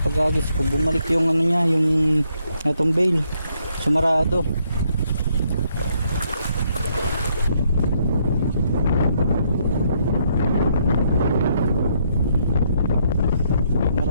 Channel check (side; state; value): both; inverted; correlation -0.73